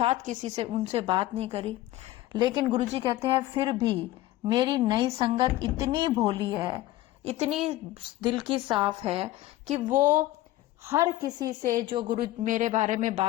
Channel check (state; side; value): quieter; right; 15.9 dB